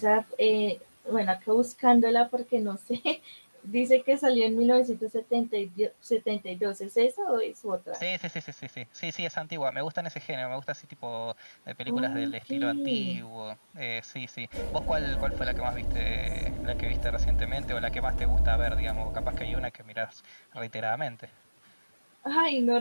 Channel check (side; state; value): both; inverted; correlation -1.00